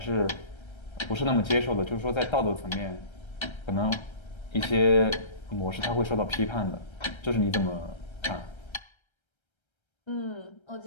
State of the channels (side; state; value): right; late; 1.3 ms